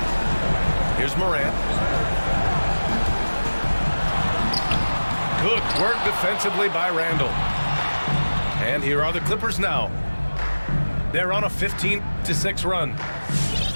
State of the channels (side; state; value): both; inverted; correlation -1.00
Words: Here's Morant. Good work defensively by Randall. And here are the Clippers now. They're on a 15-6 run.